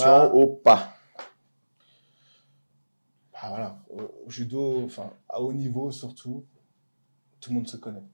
Bah, ou pas? Bah voilà, au judo, enfin, à haut niveau surtout, tout le monde se connaît.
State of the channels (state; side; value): inverted; both; correlation -1.00